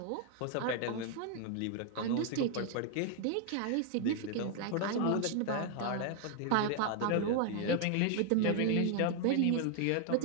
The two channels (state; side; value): different; both; correlation 0.00